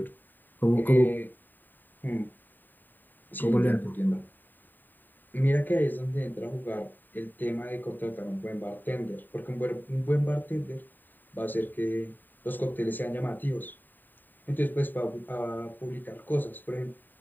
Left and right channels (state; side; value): late; right; 0.090 ms